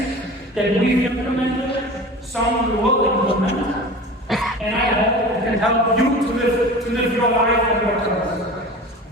that we've implemented, some we will implement, and I hope it can help you to live your life and your purpose.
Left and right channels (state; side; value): normal; both; correlation 0.36